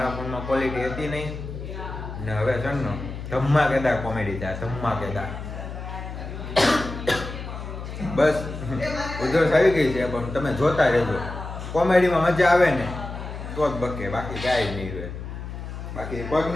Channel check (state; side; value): noise; left; hum, 9 dB below the sound